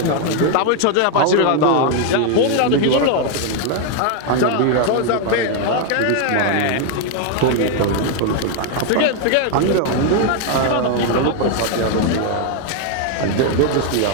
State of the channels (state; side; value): different; both; correlation 0.01